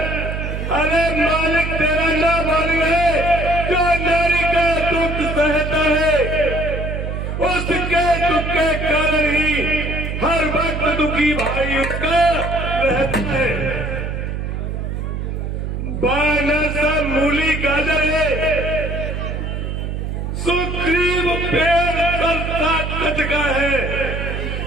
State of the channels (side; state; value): right; noise; hum, 4 dB below the sound